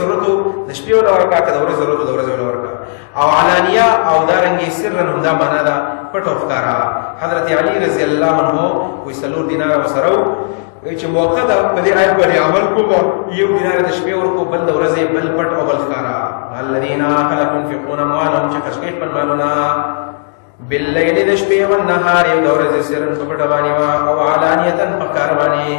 و د شپې وله ورکوه، که د ورځې ضرورت و د ورځې وله ورکوه. او علانیه او دارنګې سرا هم دا معنا ده پټ او ښکارا. حضرت علي رضی الله عنه وایي 4 دیناره ورسره و، چې موقع ده په دې آیت باندې عمل کوم، 1 دینار د شپې ورکو، بل د ورځې، بل پټ او بل ښکارا. الذين خلق ينفقون اموالهم چې خرج کوي خپل مالونه بالليل د شپې او النهار یو د ورځې سرن په پټ باندې او علانیه په ښکار باندې،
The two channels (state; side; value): silent; right; digital silence